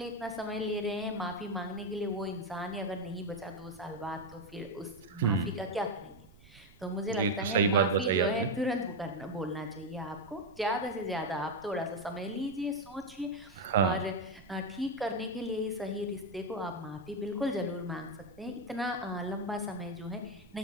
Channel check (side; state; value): right; noise; rumble, 23 dB below the sound